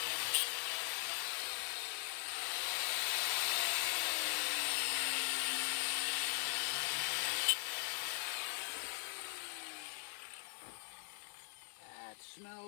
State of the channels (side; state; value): right; silent; 51 dB below the other